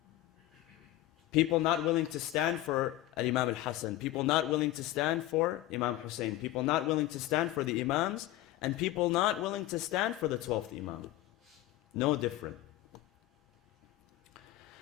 People not willing to stand for Imam al-Hassan, people not willing to stand for Imam Hussein, people not willing to stand for the Imams, and people not willing to stand for the 12th Imam. No different.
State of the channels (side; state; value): right; quieter; 15.3 dB